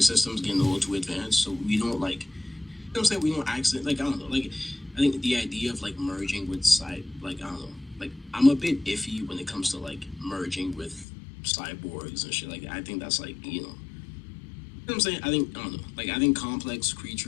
getting a little too advanced, so we don't like, you know what I'm saying, we don't accident, like, I don't know, like, I think the idea of like merging with like, I don't know, like, I'm a bit iffy when it comes to like merging with cyborgs and shit like that. I think that's like, you know what I'm saying? I think, I don't know, like, I think complex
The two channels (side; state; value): right; drops out; at 11.1 s